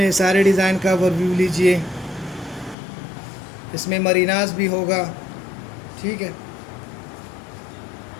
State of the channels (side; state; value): right; drops out; at 2.8 s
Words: सारे डिज़ाइन का ओवरव्यू लीजिए। इसमें मरीनास भी होगा। ठीक है,